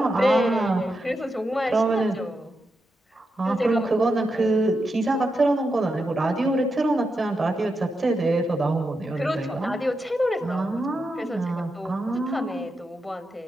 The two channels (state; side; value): normal; both; correlation 0.86